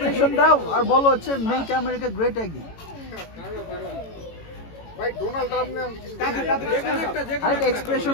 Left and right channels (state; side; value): late; right; 18 ms